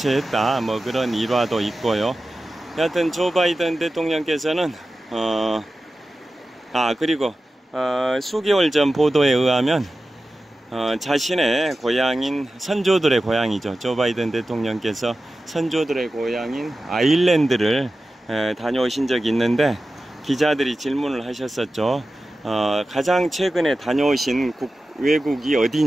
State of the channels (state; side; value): normal; both; correlation 0.94